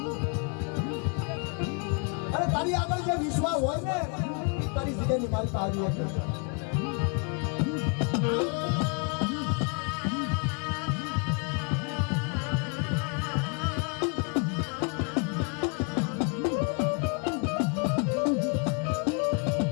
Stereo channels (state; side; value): quieter; right; 36.0 dB